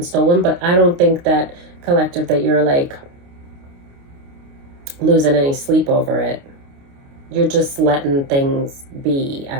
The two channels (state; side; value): late; left; 29 ms